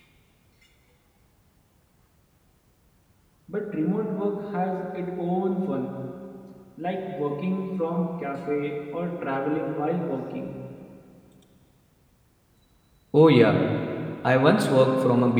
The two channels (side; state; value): both; identical; correlation 1.00